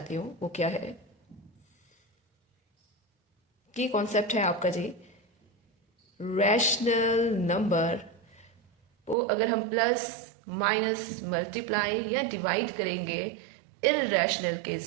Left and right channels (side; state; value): left; drops out; at 9.2 s